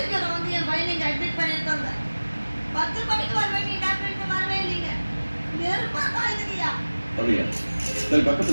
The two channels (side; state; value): both; inverted; correlation -1.00